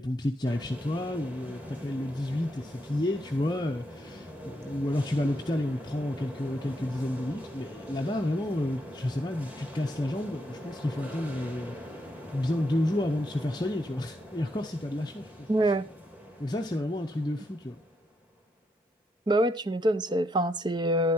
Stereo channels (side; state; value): both; normal; correlation 0.79